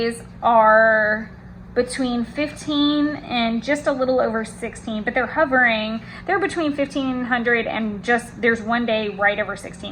are between 15 and just a little over 16, but they're between 1500 and there's one day right over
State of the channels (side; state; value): both; identical; correlation 1.00